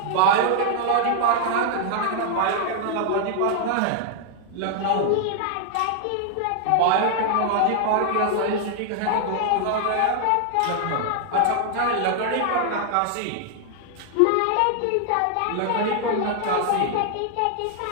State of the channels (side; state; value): both; different; correlation 0.00